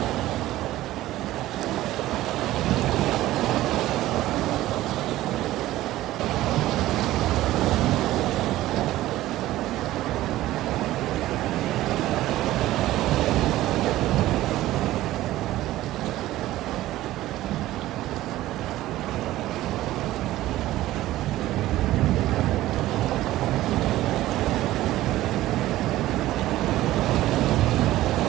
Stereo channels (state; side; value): quieter; left; 15.5 dB